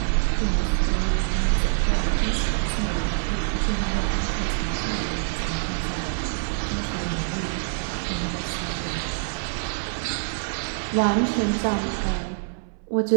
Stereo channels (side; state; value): left; silent; 62 dB below the other